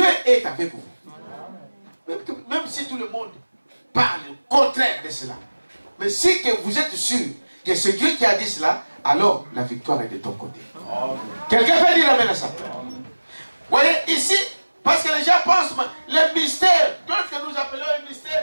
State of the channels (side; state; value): both; inverted; correlation -1.00